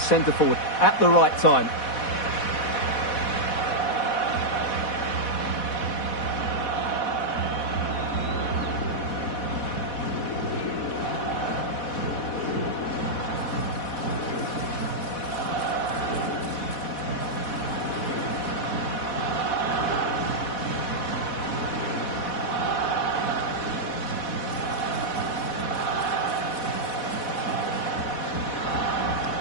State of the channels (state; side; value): late; right; 4.1 ms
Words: forward at the right time.